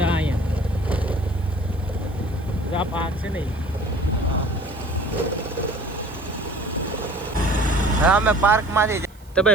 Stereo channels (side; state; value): right; noise; hiss, 28 dB below the sound